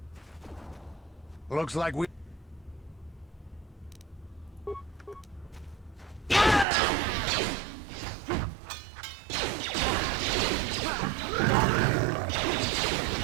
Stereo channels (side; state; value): left; drops out; at 6.7 s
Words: Looks like we...